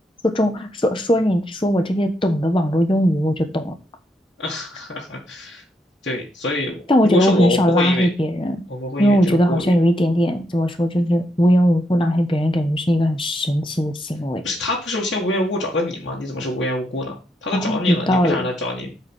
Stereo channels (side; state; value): both; normal; correlation 0.78